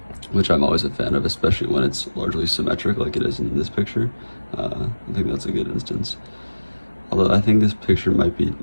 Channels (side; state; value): both; inverted; correlation -1.00